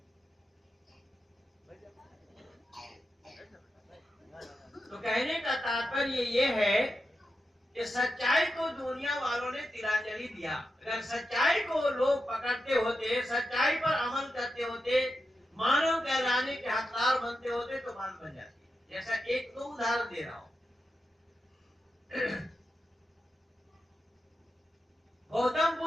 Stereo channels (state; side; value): normal; both; correlation 0.88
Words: तो कहने का तात्पर्य ये है कि सच्चाई को दुनिया वालों ने तिलांजलि दिया। अगर सच्चाई को लोग पकड़ते होते, सच्चाई पर अमल करते होते, मानव कहलाने के हकदार बनते होते तो बात बन जाती। जैसा एक तो उदाहरण दे रहा हूं, गौतम